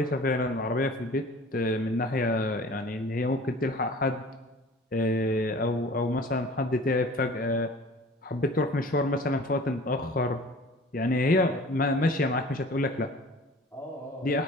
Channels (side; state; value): both; normal; correlation 0.44